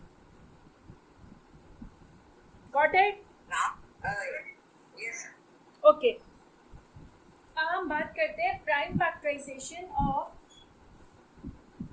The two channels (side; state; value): both; identical; correlation 1.00